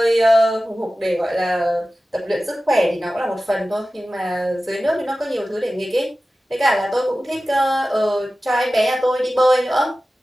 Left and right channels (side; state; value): both; normal; correlation 0.95